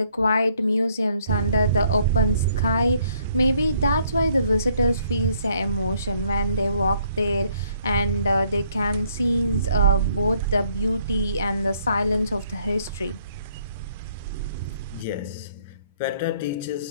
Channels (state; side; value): inverted; both; correlation -0.66